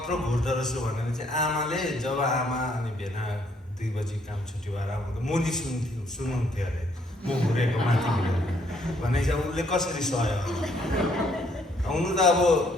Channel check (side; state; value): both; normal; correlation 0.68